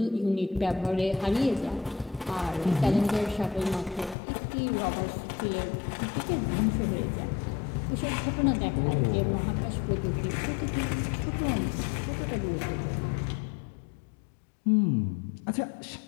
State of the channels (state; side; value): drops out; right; at 4.2 s